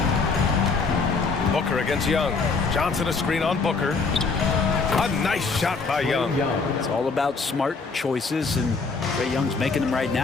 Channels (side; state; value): right; quieter; 4.4 dB